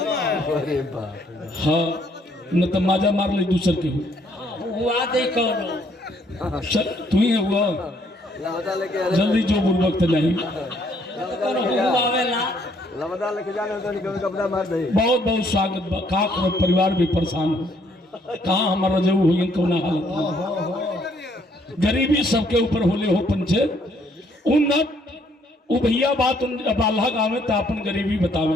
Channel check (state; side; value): normal; both; correlation 0.67